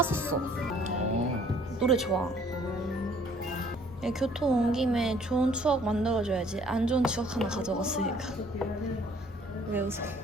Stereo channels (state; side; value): normal; both; correlation 0.59